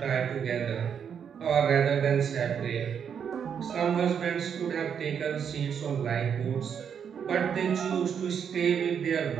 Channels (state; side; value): quieter; left; 7.6 dB